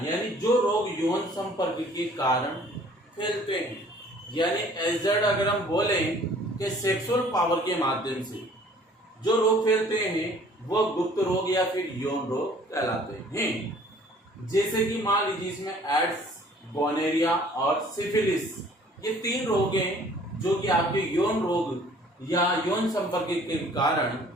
यानी जो रोग यौन संपर्क के कारण फैलते हैं, यानी एजड अगर हम बोलें कि सेक्सुअल पावर के माध्यम से जो रोग फैलते हैं वो गुप्त रोग या फिर यौन रोग कहलाते हैं। जैसे कि मान लीजिए इसमें एड्स, गोनेरिया और सिफिलिस, ये 3 रोग हैं जो कि आपके यौन रोग या यौन संपर्क के कारण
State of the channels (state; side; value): normal; both; correlation 0.54